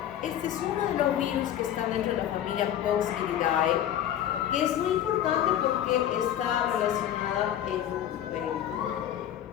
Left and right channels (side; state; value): right; quieter; 11.1 dB